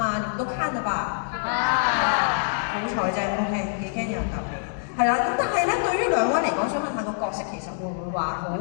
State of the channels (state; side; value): silent; right; digital silence